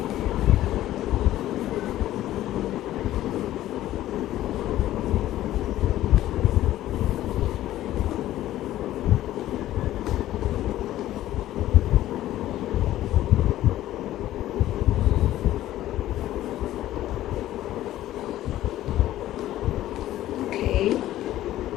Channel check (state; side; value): quieter; right; 14.0 dB